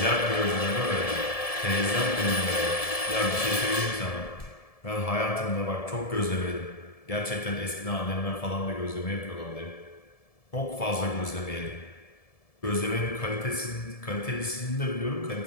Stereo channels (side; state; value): right; late; 1.7 ms